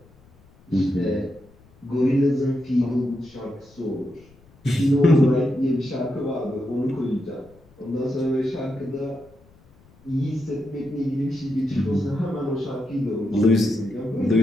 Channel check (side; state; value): left; noise; rumble, 28 dB below the sound